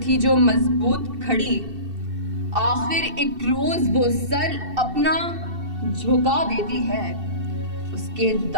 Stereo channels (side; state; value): left; late; 2.7 ms